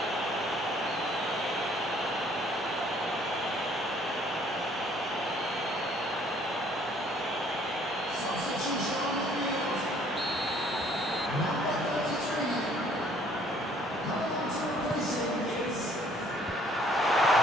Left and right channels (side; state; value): both; normal; correlation 0.60